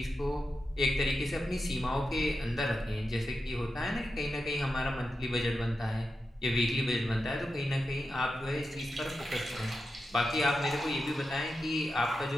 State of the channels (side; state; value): both; normal; correlation 0.89